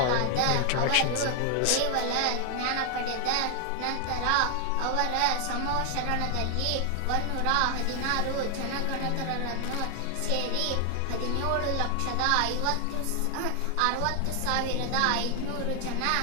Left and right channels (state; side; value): different; both; correlation 0.00